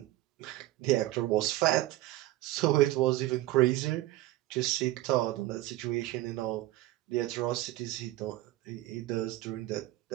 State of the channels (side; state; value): left; quieter; 16.6 dB